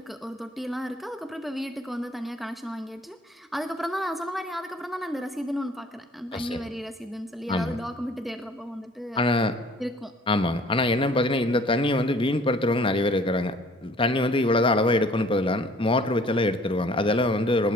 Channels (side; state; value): both; normal; correlation 0.54